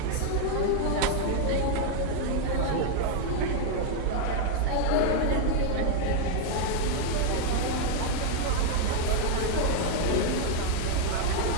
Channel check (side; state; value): both; different; correlation 0.00